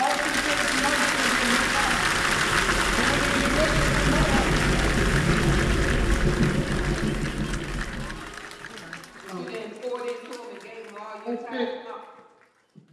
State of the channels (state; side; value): identical; both; correlation 1.00